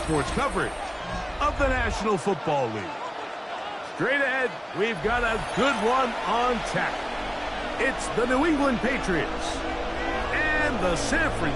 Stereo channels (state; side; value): identical; both; correlation 1.00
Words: coverage of the National Football League. Straight ahead, we've got a good one on tap. It's the New England Patriots and the San